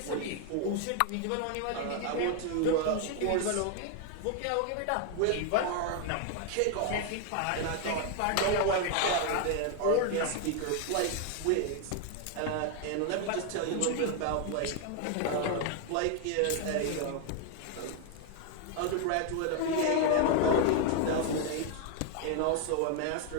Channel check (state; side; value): different; both; correlation 0.01